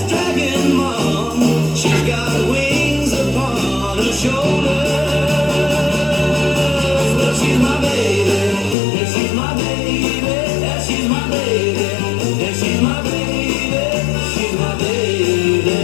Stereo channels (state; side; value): drops out; right; at 8.8 s